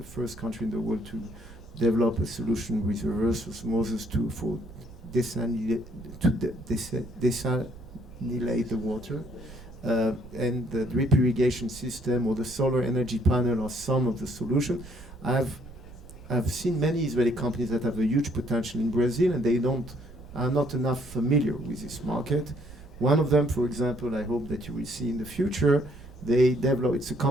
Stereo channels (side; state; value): right; noise; rumble, 18 dB below the sound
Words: first country in the world to develop a solution with reverse osmosis for desalinate the water. And the drip irrigation system or the solar energy panel are some of the solution. I've seen many Israeli companies that have a huge potential in Brazil, and they are not enough familiar with this market. One of them, for example, I hope that you will see in the future, it's a